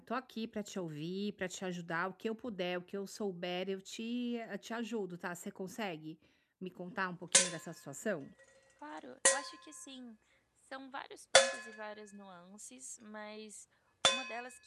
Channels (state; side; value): identical; both; correlation 1.00